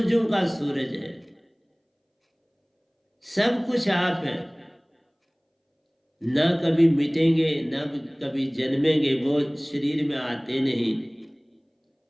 का सूरज है, सब कुछ आप है, ना कभी मिटेंगे ना कभी जन्मेंगे, वो शरीर में आते नहीं,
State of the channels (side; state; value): both; identical; correlation 1.00